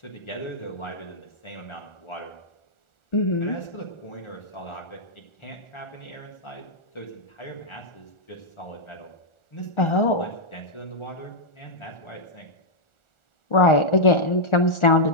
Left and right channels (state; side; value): late; right; 1.4 ms